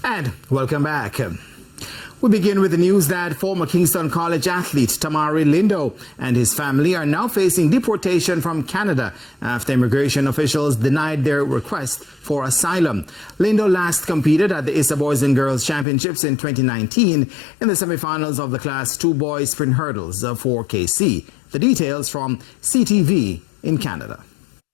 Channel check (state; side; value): drops out; right; at 15.9 s